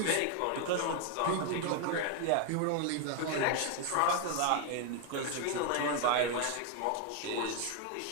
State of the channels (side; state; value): both; different; correlation 0.01